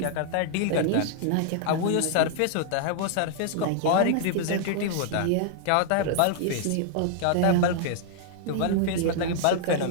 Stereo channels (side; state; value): both; different; correlation -0.01